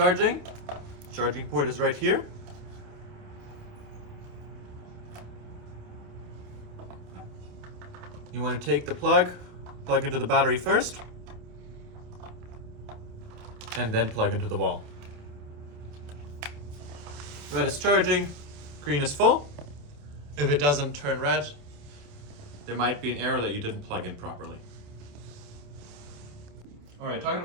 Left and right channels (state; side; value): late; left; 28 ms